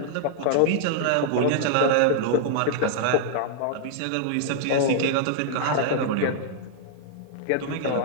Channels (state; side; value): different; both; correlation -0.01